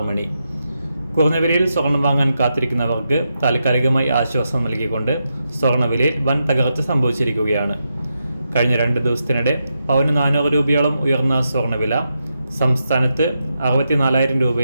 മണി. കുറഞ്ഞ വിലയിൽ സ്വർണം വാങ്ങാൻ കാത്തിരിക്കുന്നവർക്ക് താൽക്കാലികമായി ആശ്വാസം നൽകിക്കൊണ്ട് സ്വർണ്ണവിലയിൽ വൻ തകർച്ച സംഭവിച്ചിരിക്കുകയാണ്. കഴിഞ്ഞ 2 ദിവസത്തിനിടെ പവന് 400 രൂപയോളം ഉയർന്ന സ്വർണ്ണവില സംസ്ഥാനത്ത് 64,000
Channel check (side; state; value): both; inverted; correlation -0.85